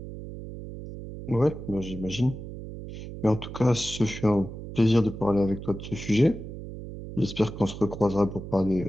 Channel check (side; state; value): right; noise; hum, 10 dB below the sound